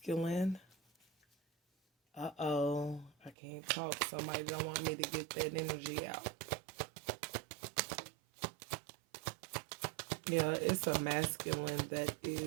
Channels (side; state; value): left; drops out; at 3.4 s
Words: I can't talk. Somebody don't want me to get that energy out. Yeah, it's a masculine that